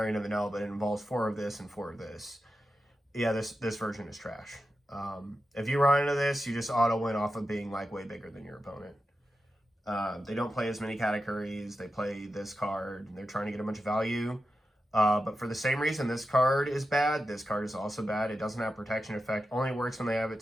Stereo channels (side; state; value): both; normal; correlation 0.91